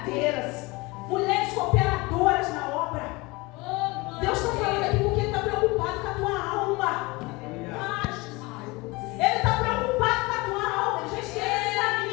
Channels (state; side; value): quieter; right; 23.9 dB